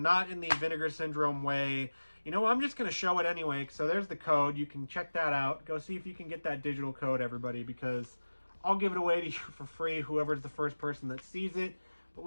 not in the Vinegar Syndrome way. You know, I'm just going to show it anyway, so there's the code. You can check that out. Go see if you can get that digital code, everybody, because I'll give it away to you for free, whoever's the first person that sees it. But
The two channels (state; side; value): inverted; both; correlation -1.00